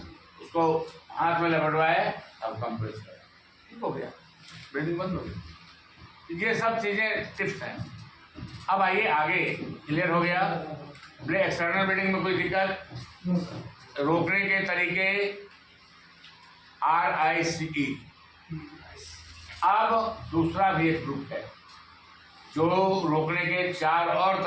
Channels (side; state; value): both; identical; correlation 1.00